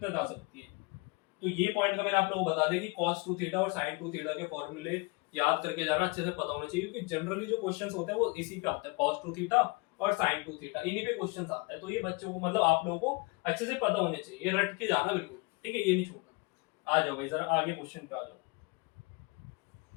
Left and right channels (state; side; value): quieter; right; 27.8 dB